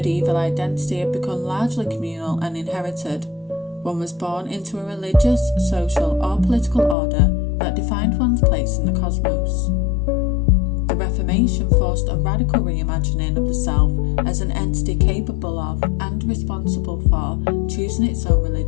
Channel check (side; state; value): right; drops out; at 7.0 s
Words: identity had become largely communal and inherited. One was born into a religious, social, or political order that defined one's place in the cosmos. The Reformation forced a radical reimagining of the self as an entity capable of and responsible for choosing its own